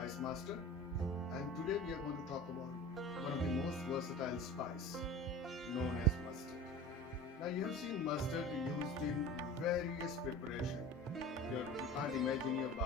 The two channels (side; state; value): both; normal; correlation 0.36